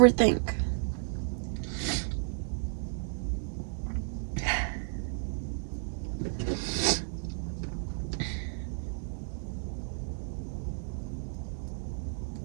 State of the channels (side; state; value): left; silent; digital silence